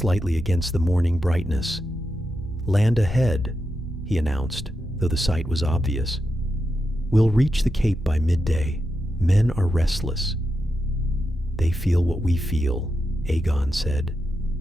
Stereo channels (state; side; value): normal; both; correlation 0.87